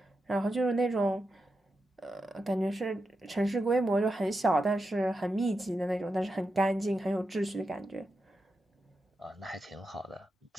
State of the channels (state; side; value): normal; both; correlation 0.88